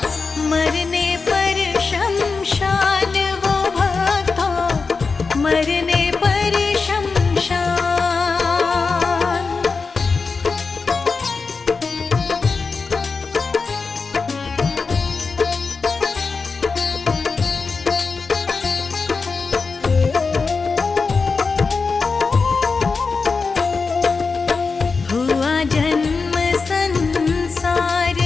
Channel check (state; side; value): quieter; right; 4.6 dB